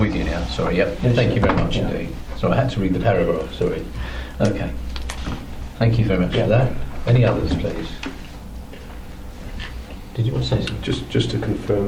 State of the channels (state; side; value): identical; both; correlation 1.00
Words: you now. Sorry, yep. Yes, Thank sir. you very much Yeah. indeed. Sorry, I had to read the paragraph, sorry. Okay. Thank you very much Yeah. for that. Any others, please? Did you want to say something? Just to